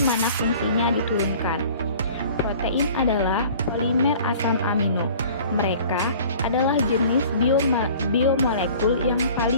fungsinya diturunkan. Protein adalah polimer asam amino. Mereka adalah jenis biomolekul yang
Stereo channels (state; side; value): inverted; both; correlation -0.47